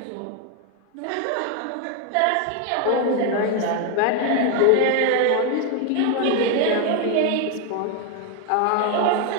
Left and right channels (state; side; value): different; both; correlation 0.01